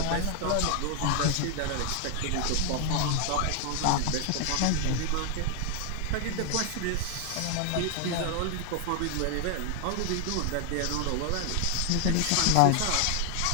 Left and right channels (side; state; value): both; different; correlation 0.00